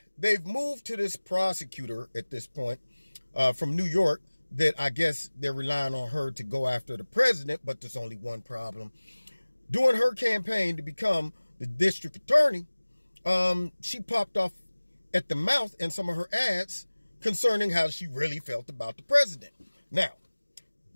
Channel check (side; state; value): both; inverted; correlation -1.00